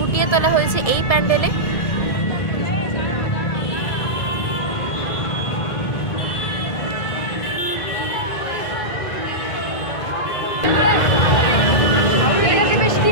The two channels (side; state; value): right; late; 1.7 ms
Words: তোলা হয়েছে এই প্যান্ডেলে।